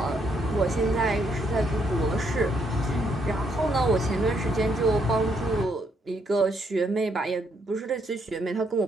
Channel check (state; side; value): normal; both; correlation 0.74